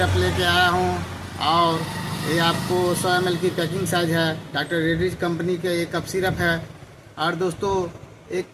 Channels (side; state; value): both; identical; correlation 1.00